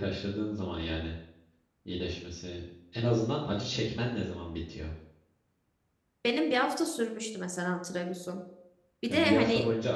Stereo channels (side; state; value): both; identical; correlation 1.00